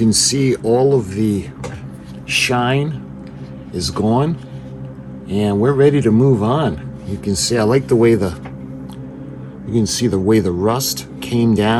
see all of the shine is gone, and we're ready to move on. You can see I like the way you can see the way the rust came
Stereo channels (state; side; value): identical; both; correlation 1.00